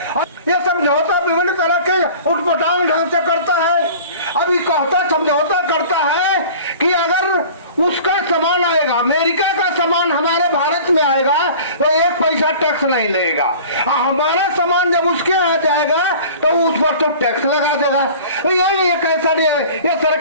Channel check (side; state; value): both; inverted; correlation -0.43